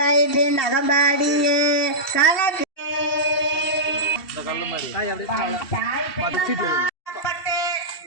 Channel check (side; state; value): right; late; 2.7 ms